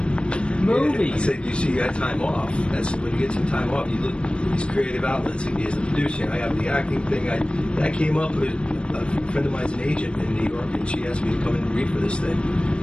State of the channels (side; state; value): right; late; 0.056 ms